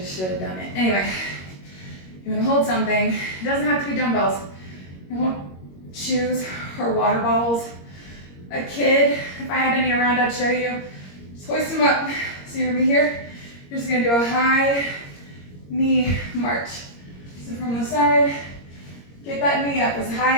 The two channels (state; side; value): late; right; 21 ms